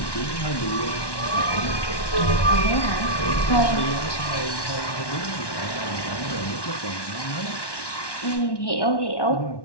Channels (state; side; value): late; right; 1.1 ms